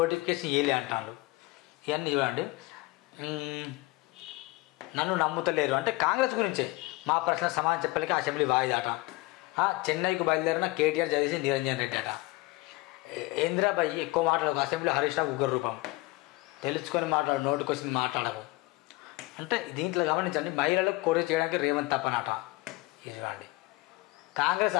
ఇవ్వలే అంటాను. ఇవన్నీ చూడండి. నన్ను నమ్ముతలేరు అంటే కాంగ్రెస్ గురించే. మా ప్రశ్న సమాధానం చెప్పలేక అసెంబ్లీ వాయిదాట. చెన్నైకి బయలుదేరిన కేటీఆర్ చదివేసి నిరంజన్ రెడ్డి అట. ఇందిరాబాయి ఎక్కువ మాట్లాడకు, అసెంబ్లీ హరీష్ రావు ఉగ్ర రూపం, తెలుసుకొని మాట్లాడు, నోటికి వచ్చింది మాట్లాడకు అంటే. దీంట్లో గమనించండి, మహిళలకు కోరి చేయడానికి రేవంత్ తప్పనట. ఇది చూడండి. కాంగ్రెస్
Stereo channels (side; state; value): right; quieter; 21.5 dB